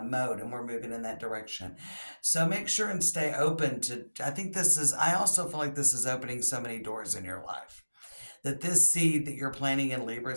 mode and we're moving in that direction. So make sure and stay open to, I also feel like this is opening so many doors in your life. That this seed that you're planting in Libra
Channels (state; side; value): inverted; both; correlation -1.00